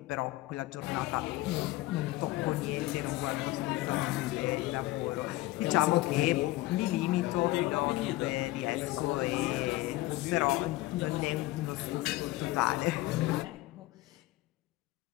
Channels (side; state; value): right; quieter; 18.1 dB